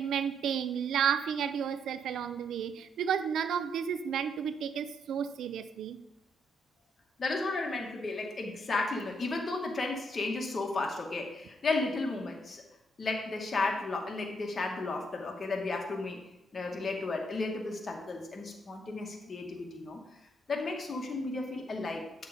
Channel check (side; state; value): both; normal; correlation 0.73